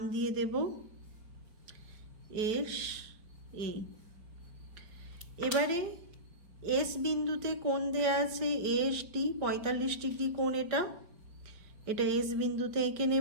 দিয়ে দেব এস এ। এবারে এস বিন্দুতে কোণ দেয়া আছে এস ডি। 45 ডিগ্রি কোণ এটা এস বিন্দুতে এঁকে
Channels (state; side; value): late; left; 4.9 ms